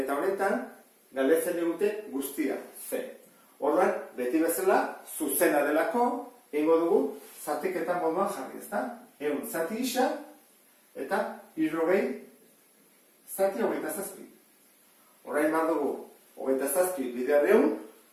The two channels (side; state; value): both; identical; correlation 1.00